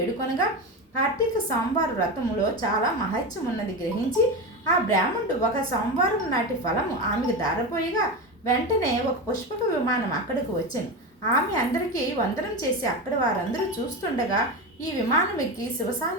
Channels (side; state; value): both; normal; correlation 0.20